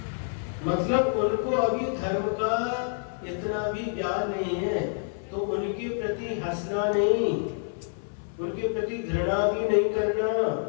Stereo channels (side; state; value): right; silent; 58 dB below the other